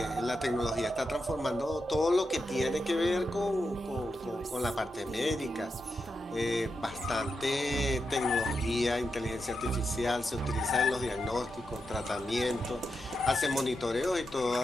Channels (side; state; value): both; normal; correlation 0.87